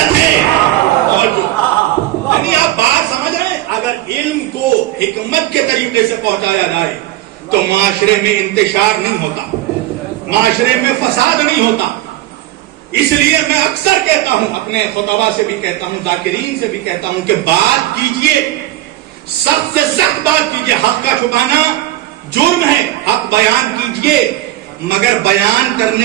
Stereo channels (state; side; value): quieter; left; 15.3 dB